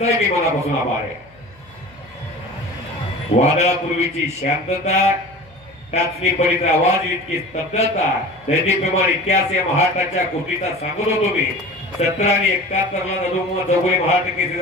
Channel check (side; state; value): left; noise; hum, 29 dB below the sound